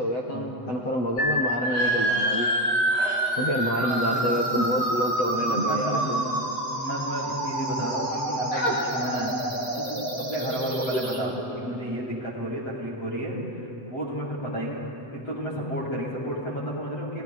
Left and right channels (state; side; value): late; right; 7.9 ms